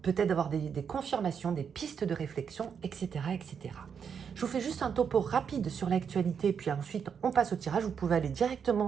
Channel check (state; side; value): quieter; left; 7.0 dB